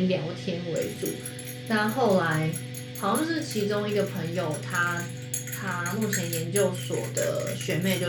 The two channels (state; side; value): identical; both; correlation 1.00